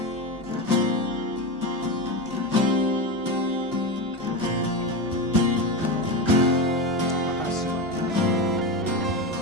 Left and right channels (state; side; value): normal; both; correlation 0.17